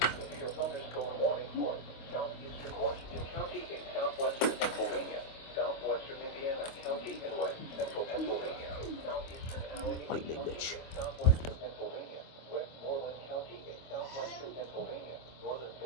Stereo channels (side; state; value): right; late; 25 ms